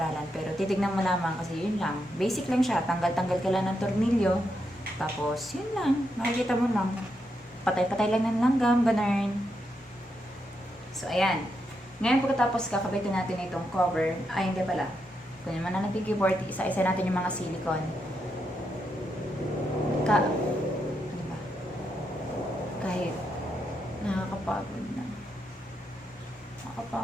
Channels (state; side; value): normal; both; correlation 0.82